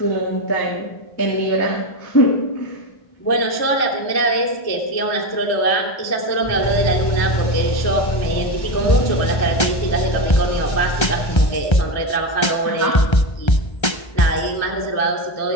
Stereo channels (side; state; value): right; late; 1.3 ms